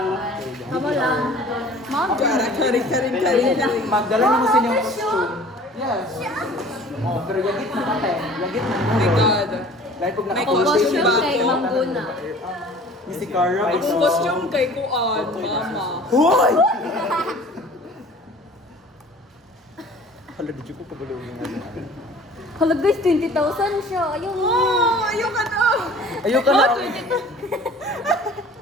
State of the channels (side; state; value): both; normal; correlation 0.47